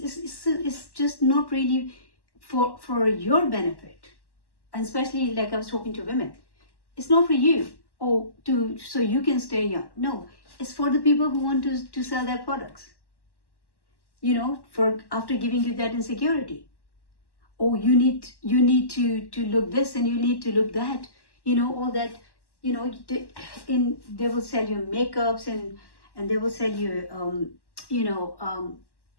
just not really for your benefit. And especially like I was talking to women. It's not for you. So you can stay young. No, it's for the people who want to sell their products. For after giving you that insecurity. You need to look this and you need to look that. All that. They will sell you makeups and they will sell you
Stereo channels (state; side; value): late; right; 1.1 ms